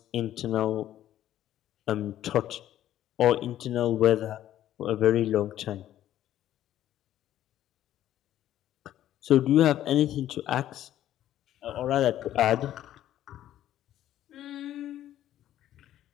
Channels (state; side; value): quieter; right; 12.3 dB